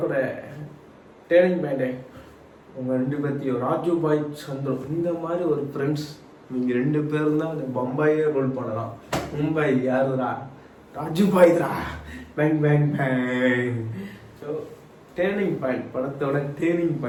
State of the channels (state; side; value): identical; both; correlation 1.00